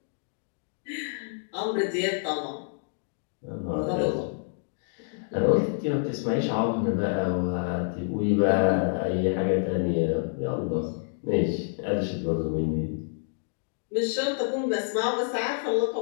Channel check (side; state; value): right; silent; digital silence